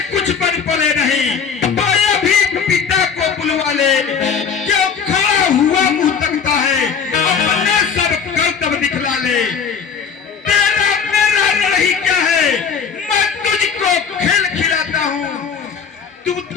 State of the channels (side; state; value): right; quieter; 6.4 dB